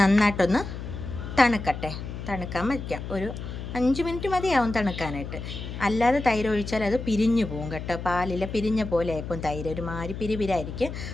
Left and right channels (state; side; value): noise; left; hum, 8 dB below the sound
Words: നന്നായിട്ടൊന്ന് തണുക്കട്ടെ. തണുക്കാൻ വയ്ക്കാം. ഒരു 5 മിനിറ്റ് മതിയാവും തണുക്കാനായിട്ട്. അല്ലാതെ തൈര് ഒഴിച്ചാൽ അത് പിരിഞ്ഞു പോകും കേട്ടോ. പാലിൽ പിരിഞ്ഞ പോലെ ആയിപ്പോൾ തൈര് ഒരുമാതിരി പിരിപിരായിരിക്കും.